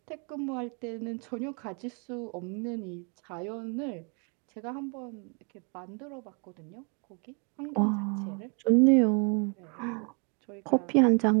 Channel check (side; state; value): left; quieter; 36.5 dB